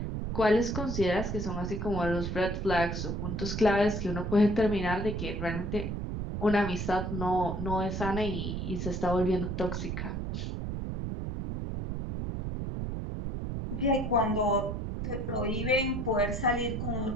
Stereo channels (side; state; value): right; noise; rumble, 3 dB below the sound